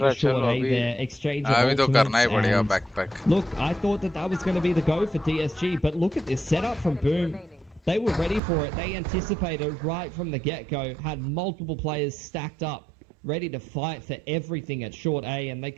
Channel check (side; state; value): left; drops out; at 8.4 s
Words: short A there. Exchange of अभी तो करना ही ultimates, पड़ेगा and backpack. look, I thought that was going to be the go for DSG, but look at this setup from Boom. They were ready for it. They anticipated right from the get-go, had multiple players stacked up, ready to fight for everything at short A, and they